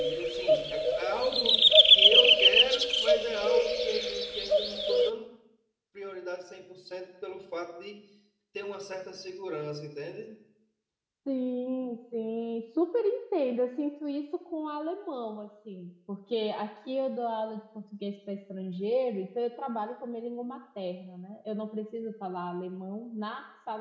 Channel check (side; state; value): both; identical; correlation 1.00